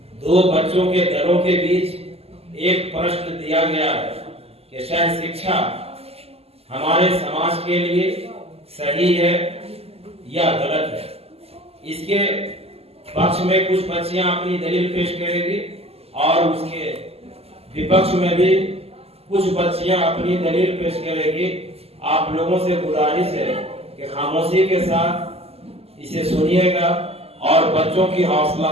दो बच्चों के दलों के बीच एक प्रश्न दिया गया है कि शायद शिक्षा हमारे समाज के लिए सही है या गलत है। इसके पक्ष में कुछ बच्चियां अपनी दलील पेश करेगी और उसके विपक्ष में भी कुछ बच्चियां अपनी दलील पेश करेगी। आप लोगों से गुजारिश है कि खामोशी के साथ इसे सुनिएगा और बच्चों की हौसला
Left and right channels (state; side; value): late; left; 0.29 ms